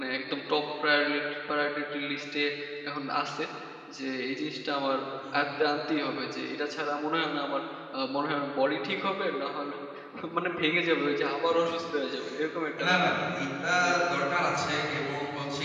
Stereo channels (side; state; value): both; identical; correlation 1.00